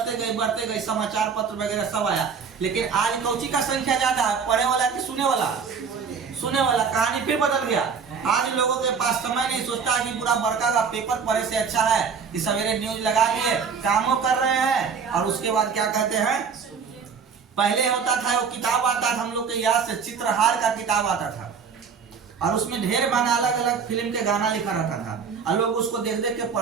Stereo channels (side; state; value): left; quieter; 6.0 dB